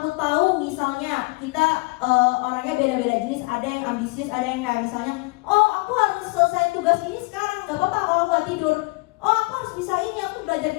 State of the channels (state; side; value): quieter; right; 26.5 dB